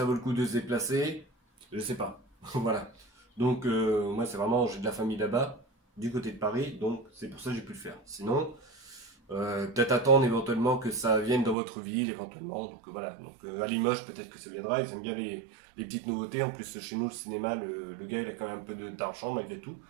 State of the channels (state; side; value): drops out; left; at 11.6 s